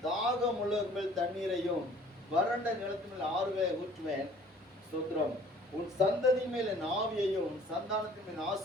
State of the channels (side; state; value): both; normal; correlation 0.53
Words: தாகம் உள்ளவர் மேல் தண்ணீரையும் வறண்ட நிலத்தின் மேல் ஆறுகளை ஊற்றுவேன். ஸ்தோத்திரம். உன் சந்ததி மேல் என் ஆவியையும் உன் சந்தானத்தின் மேல்